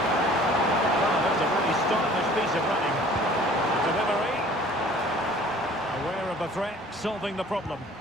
Well, that's a really stylish piece of running. Delivery. Aware of the threat, solving the problem.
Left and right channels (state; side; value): normal; both; correlation 0.50